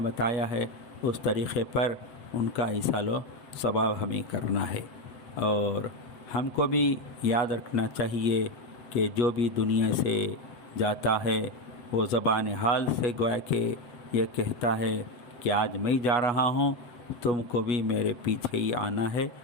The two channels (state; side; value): late; right; 7.7 ms